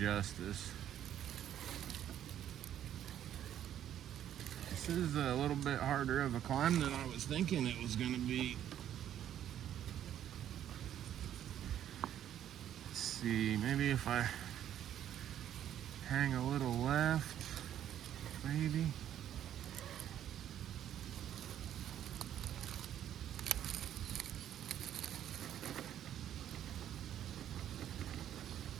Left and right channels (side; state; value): left; quieter; 10.8 dB